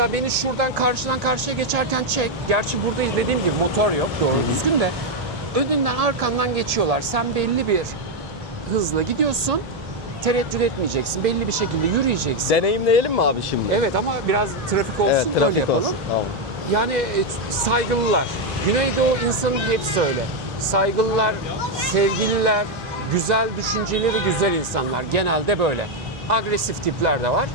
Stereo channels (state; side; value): normal; both; correlation 0.03